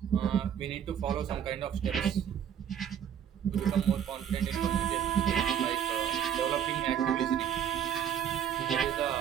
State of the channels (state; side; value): quieter; left; 9.0 dB